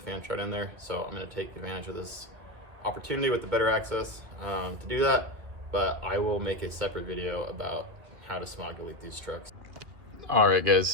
shroud in there. So I'm gonna take advantage of this opportunity with the better access to do that. But I will make a separate video about how to smog delete these trucks. All right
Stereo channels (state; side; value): late; left; 2.5 ms